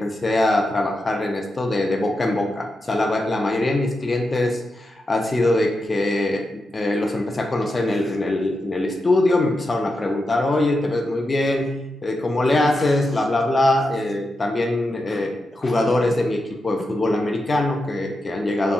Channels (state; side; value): normal; both; correlation 0.88